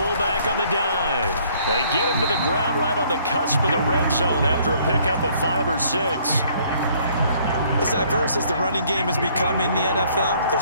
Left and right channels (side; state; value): both; inverted; correlation -0.62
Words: on the dive. They get him to the ground right on the cusp of the red zone after a pickup of 5 or 6. As diverse as the running game has become in the NFL,